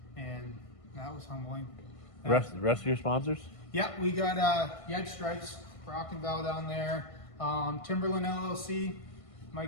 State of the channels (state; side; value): late; right; 1.5 ms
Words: and that was humbling. Rest of your sponsors? Yeah, we got Yed Stripes, Rock and Val down there, Timberland LLC,